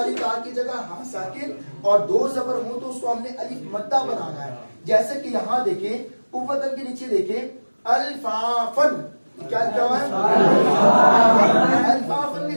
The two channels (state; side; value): inverted; both; correlation -1.00